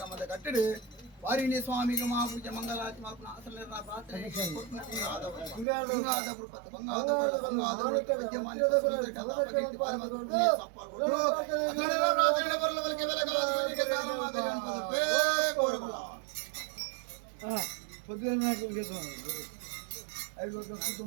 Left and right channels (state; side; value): drops out; left; at 5.7 s